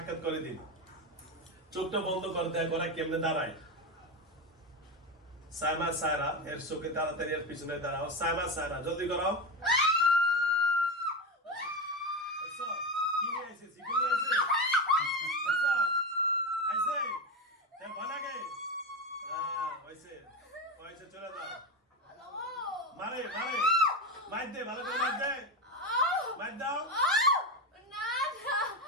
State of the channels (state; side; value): normal; both; correlation 0.17